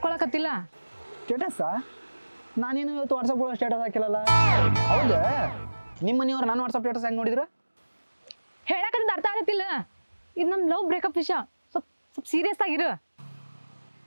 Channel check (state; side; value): inverted; both; correlation -1.00